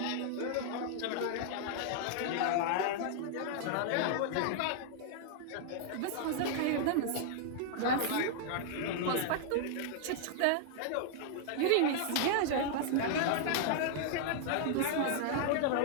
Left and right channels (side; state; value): both; different; correlation -0.01